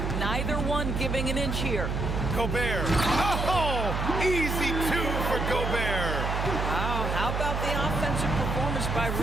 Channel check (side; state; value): right; noise; hum, 1 dB below the sound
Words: Neither one giving an inch here. Gobert. Oh! Easy 2 for Gobert. Wow, how about the offensive performance by